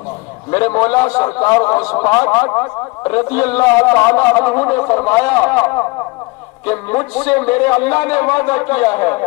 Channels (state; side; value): quieter; right; 25.8 dB